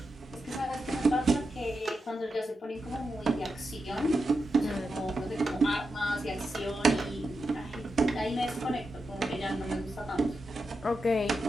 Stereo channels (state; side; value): normal; both; correlation 0.88